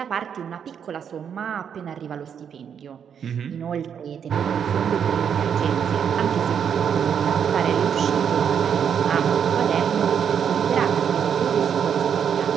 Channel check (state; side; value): quieter; left; 7.8 dB